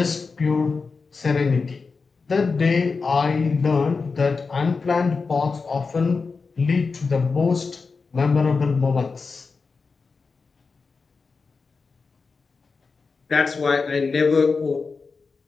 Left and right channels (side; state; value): right; quieter; 4.6 dB